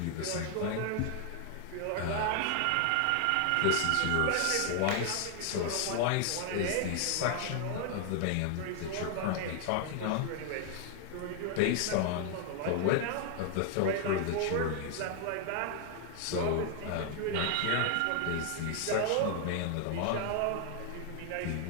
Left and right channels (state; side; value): different; both; correlation 0.00